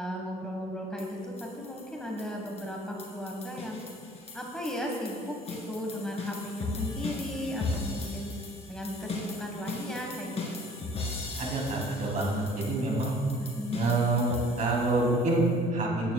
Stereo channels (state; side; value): normal; both; correlation 0.52